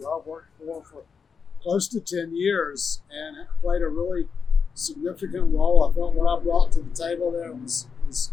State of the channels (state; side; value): quieter; right; 5.8 dB